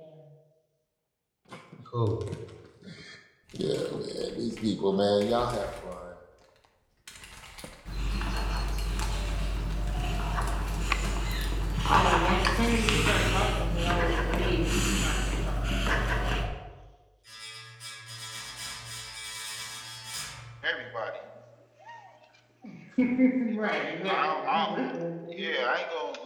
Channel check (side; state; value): both; identical; correlation 1.00